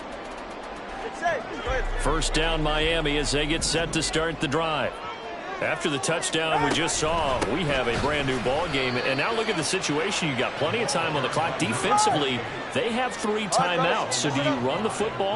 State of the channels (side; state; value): both; identical; correlation 1.00